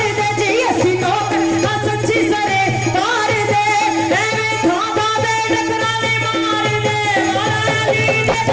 दे जी असी नौकर वा सच्ची सरकार दे एवें धागा दे डकराने मार दे मारा अली दे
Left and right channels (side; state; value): both; identical; correlation 1.00